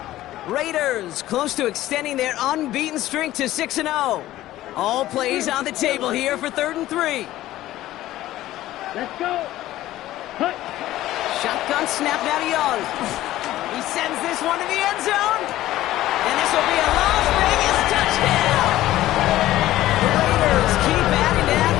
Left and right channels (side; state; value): right; quieter; 15.0 dB